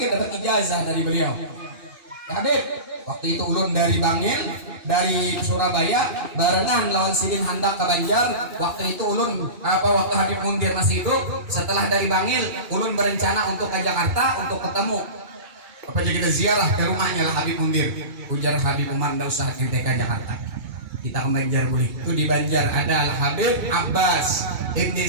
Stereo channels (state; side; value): late; left; 2.2 ms